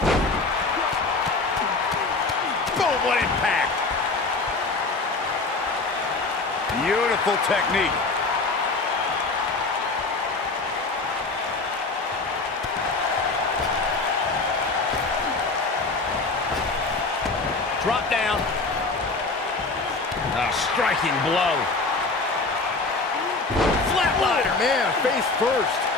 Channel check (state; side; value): quieter; right; 3.7 dB